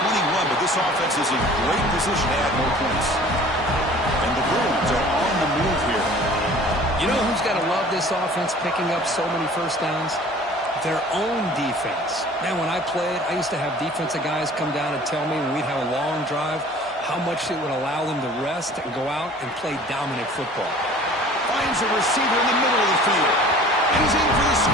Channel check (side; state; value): both; normal; correlation 0.47